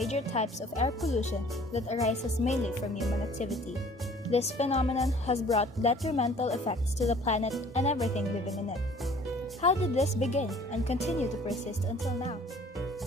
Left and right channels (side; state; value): both; normal; correlation 0.52